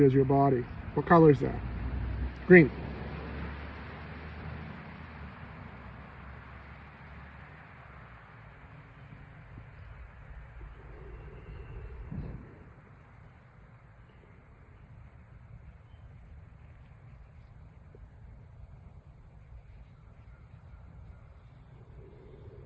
as your body. What color is that? Green.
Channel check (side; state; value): both; identical; correlation 1.00